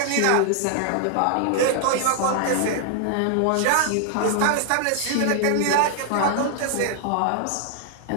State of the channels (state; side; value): different; both; correlation 0.00